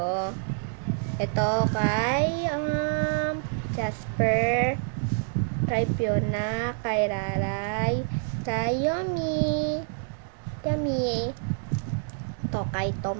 ito kay Jasper, kay Fiona, kay Raray, kay Yomi, ito kay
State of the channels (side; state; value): left; silent; digital silence